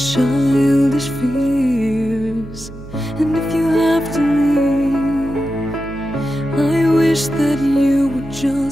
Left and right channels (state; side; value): noise; right; hum, 15 dB below the sound